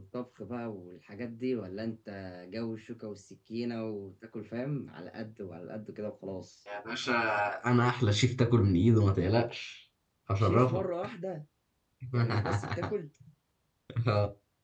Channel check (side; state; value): both; identical; correlation 1.00